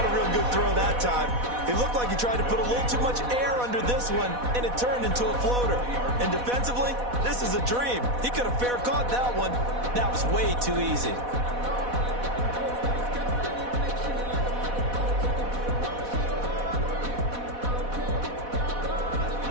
a real good throw that time. It looked like he tried to put a little too much air under this one, and it turned into a floater. And defensively, this is a dream. He could have fair caught that one. That was way too easy.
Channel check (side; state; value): left; late; 4.1 ms